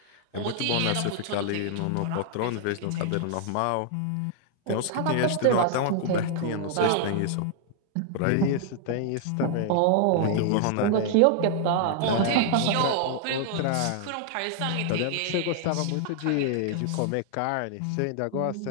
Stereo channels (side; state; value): both; different; correlation -0.01